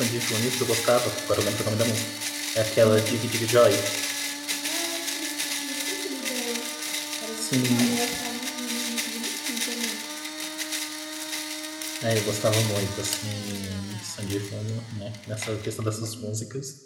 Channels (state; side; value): identical; both; correlation 1.00